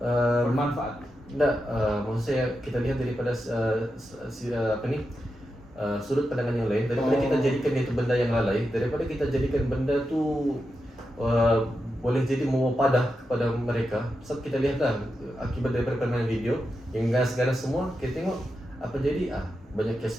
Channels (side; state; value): both; normal; correlation 0.88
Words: bermanfaat. Maksud saya kita lihat daripada sudut pandangan yang lain, daripada kita jadikan itu benda yang lalai, daripada kita jadikan benda tu boleh jadi mewapadah kepada mereka. Sebab kita lihatlah akibat daripada permainan video yang ganas-ganas semua, kita tengok apa jadi, banyak